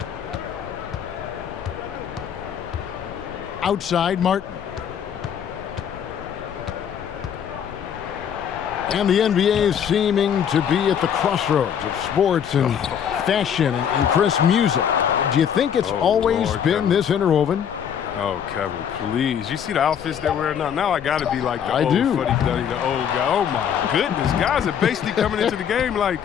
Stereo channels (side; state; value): right; quieter; 8.4 dB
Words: Outside, Martin. And the NBA is seeming to be at the crossroads of sports and fashion and crisp music. Do you think it's always been Kevin. this interwoven? Oh, Kevin, please. You see the outfits they're wearing now? Now I got to be like the I old do. fuddy-duddy, the old guy. Oh, my goodness. Guys are basically coming into the game like